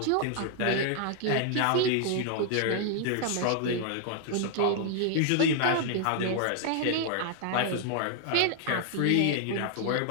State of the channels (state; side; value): different; both; correlation 0.00